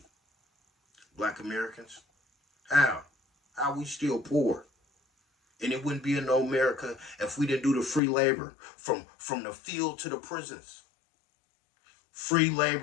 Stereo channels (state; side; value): drops out; right; at 8.0 s